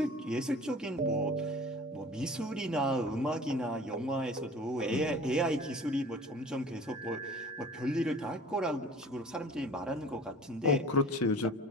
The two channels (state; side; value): normal; both; correlation 0.44